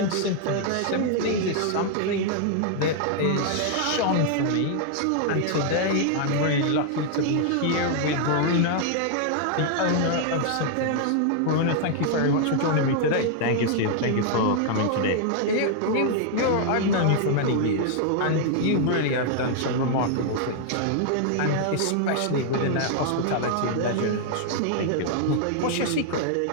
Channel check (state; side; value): different; both; correlation 0.00